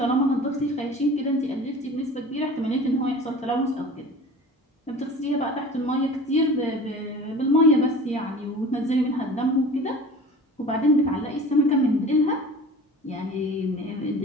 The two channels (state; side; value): normal; both; correlation 0.40